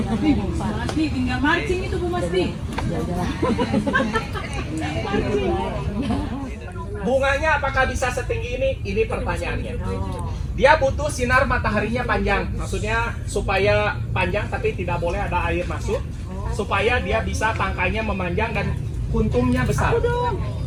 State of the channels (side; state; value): both; identical; correlation 1.00